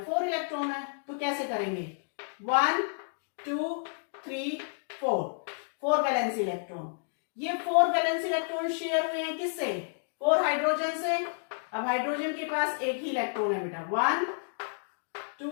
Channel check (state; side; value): silent; right; digital silence